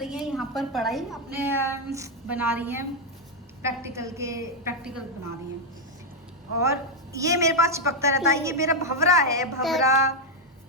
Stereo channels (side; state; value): both; normal; correlation 0.02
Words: है यहाँ पर पढ़ाई, अपने बना रही हैं प्रैक्टिकल बना रही हैं। और ये मेरे पास चिपकता रहता है। ये मेरा भवरा है, भवरा।